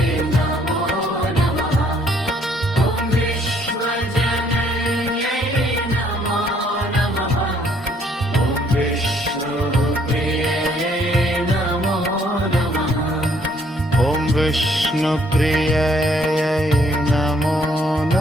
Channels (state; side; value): normal; both; correlation 0.65